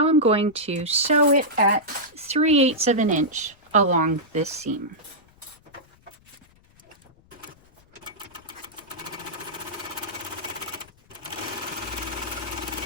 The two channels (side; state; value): left; noise; rumble, 29 dB below the sound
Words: I'm going to sew it at 3/8 of an inch along this seam.